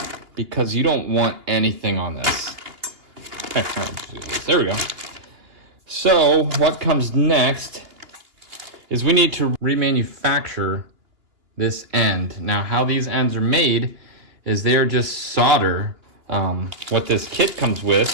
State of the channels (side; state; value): left; late; 2.8 ms